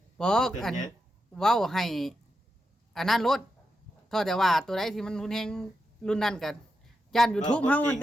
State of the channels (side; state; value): both; normal; correlation 0.87